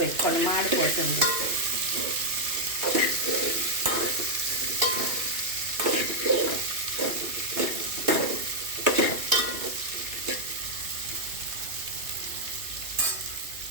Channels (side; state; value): left; late; 2.7 ms